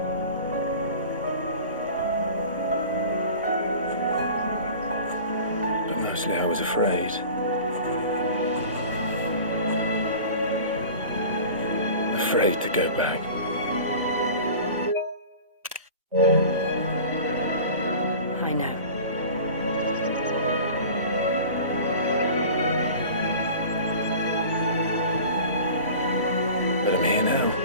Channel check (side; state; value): both; inverted; correlation -0.39